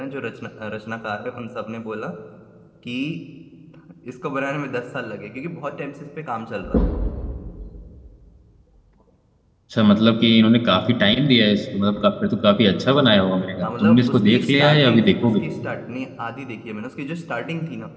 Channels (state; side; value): identical; both; correlation 1.00